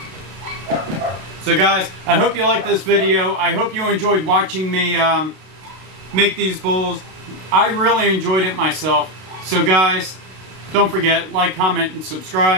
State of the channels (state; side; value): late; left; 32 ms